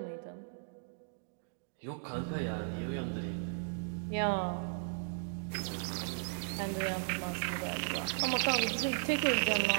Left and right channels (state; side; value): silent; left; digital silence